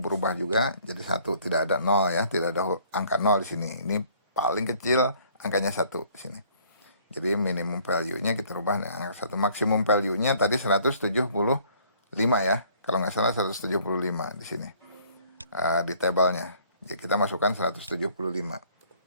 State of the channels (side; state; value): both; inverted; correlation -0.59